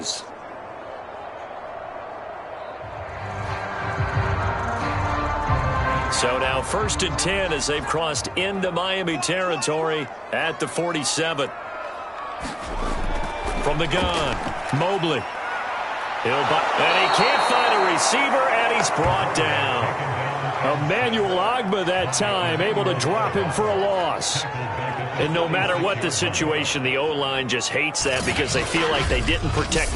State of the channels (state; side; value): identical; both; correlation 1.00